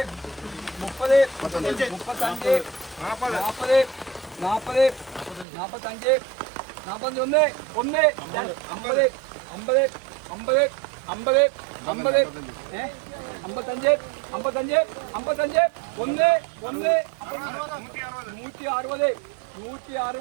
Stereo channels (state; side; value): drops out; left; at 5.5 s